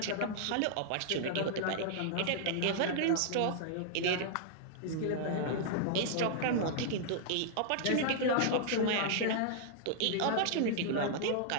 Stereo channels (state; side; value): different; both; correlation -0.01